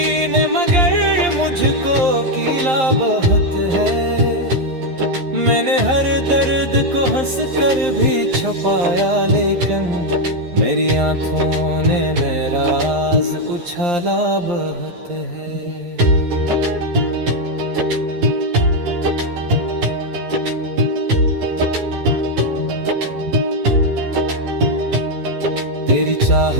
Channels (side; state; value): left; late; 11 ms